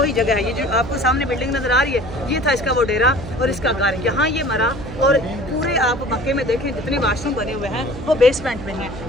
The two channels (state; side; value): noise; right; hum, 11 dB below the sound